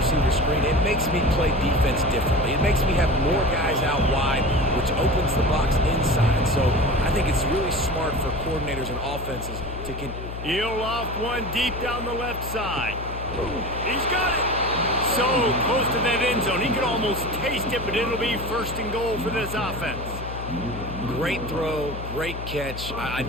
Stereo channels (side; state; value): left; noise; hum, 9 dB below the sound